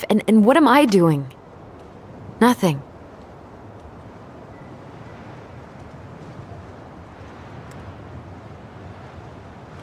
and what am I doing? Nothing.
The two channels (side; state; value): both; identical; correlation 1.00